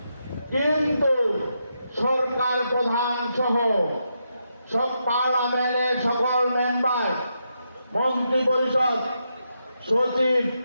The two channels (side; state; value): both; inverted; correlation -0.83